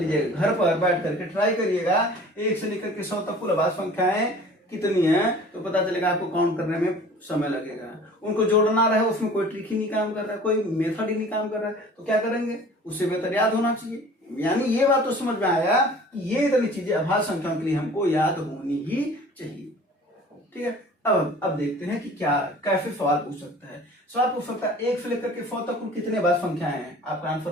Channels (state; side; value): normal; both; correlation 0.46